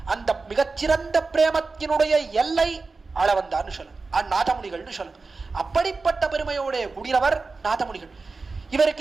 அந்த மிகச்சிறந்த பிரேமத்தினுடைய எல்லை ஆளவந்தார்னு சொல்லுங்க, நாதமுனிகள்னு சொல்லுங்க. அப்படிப்பட்ட பெருமையோடைய கூடியவர் நாதமுனிகள்.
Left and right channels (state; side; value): quieter; left; 4.0 dB